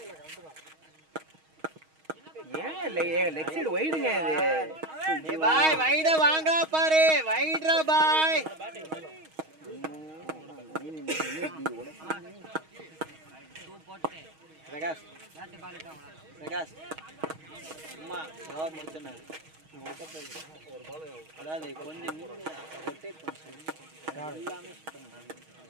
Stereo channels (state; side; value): late; left; 6.3 ms